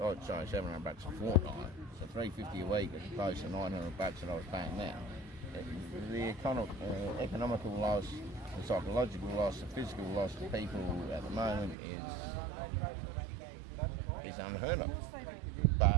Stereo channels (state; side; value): drops out; left; at 11.8 s